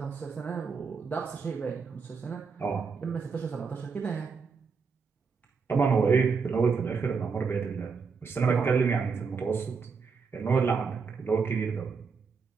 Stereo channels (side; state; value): left; quieter; 5.3 dB